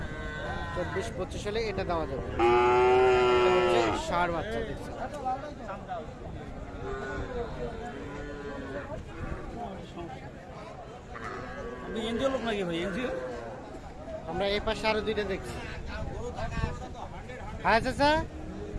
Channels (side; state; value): both; identical; correlation 1.00